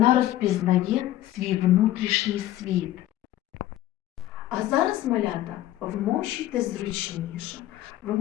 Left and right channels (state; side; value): quieter; right; 14.2 dB